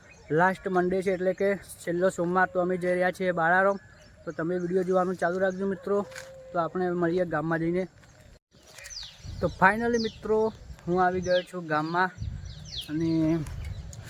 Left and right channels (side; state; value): both; identical; correlation 1.00